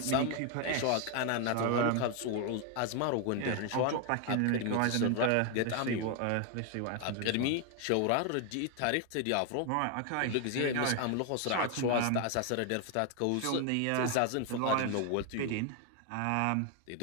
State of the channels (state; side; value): different; both; correlation 0.01